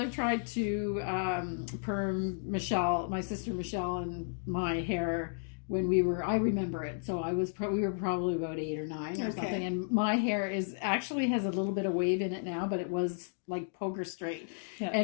tried to perm Michelle, my sister Michelle, and my hair when I remember it. So we were probably about 8 or 9 or something. And my hair actually has a little bit of wave in it now, but it was like poker straight. Yeah.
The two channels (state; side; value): silent; right; digital silence